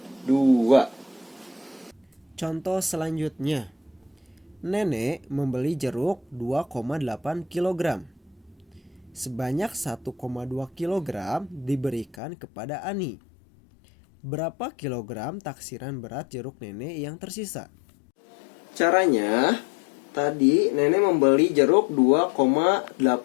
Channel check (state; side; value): drops out; right; at 12.2 s